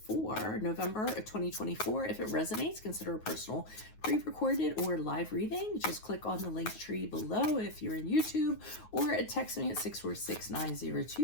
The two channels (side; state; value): right; late; 9.4 ms